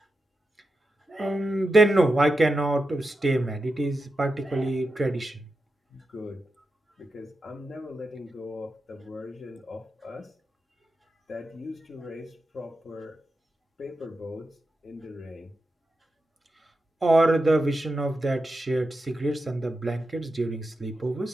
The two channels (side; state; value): both; normal; correlation 0.89